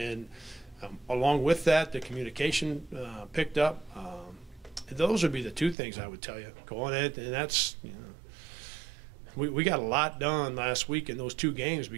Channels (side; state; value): left; drops out; at 5.8 s